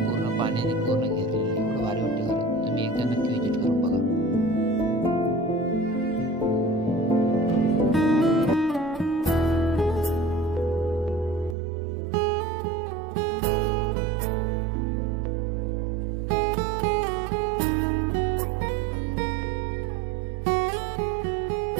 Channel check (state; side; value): drops out; left; at 11.6 s